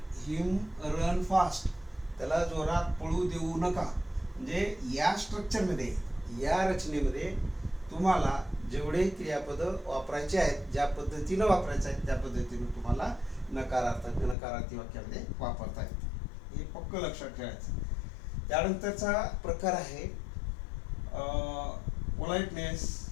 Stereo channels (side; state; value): right; drops out; at 14.4 s